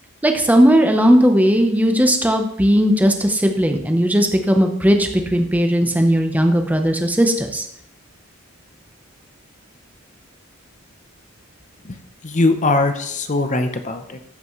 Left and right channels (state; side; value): normal; both; correlation 0.82